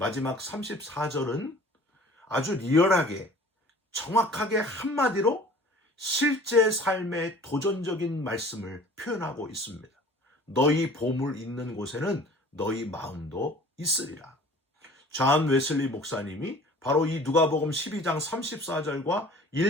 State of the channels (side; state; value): both; normal; correlation 0.47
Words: 34절은 아주 리얼하게 정확하게 한마디로 실제 삶의 도전적인 말씀을 표현하고 있습니다. 너희 보물 있는 곳에는 너희 마음도 있으리라. 존 웨슬리 목사님이 바로 이 누가복음 12장 34절과